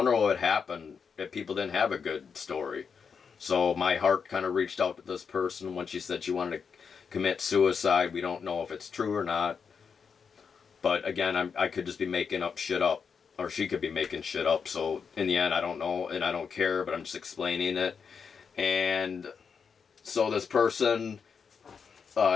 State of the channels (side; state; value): right; quieter; 6.1 dB